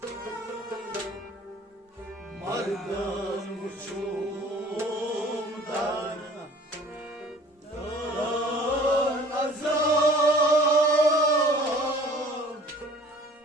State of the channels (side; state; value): both; normal; correlation 0.49